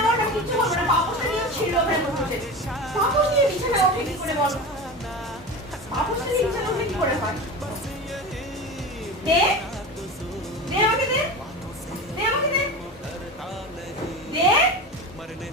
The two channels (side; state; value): both; normal; correlation 0.28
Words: ওঠা কিচ্ছু হবে না, পাপোশটা নিয়ে ছিল ওখানে বসে। পাপোশ নিয়ে বিছানায় ওঠে কি করে বলো? পাপোশটা নিয়ে বিছানায় ওঠে কি করে হয়? দে দে আমাকে দে, দে আমাকে দে, দে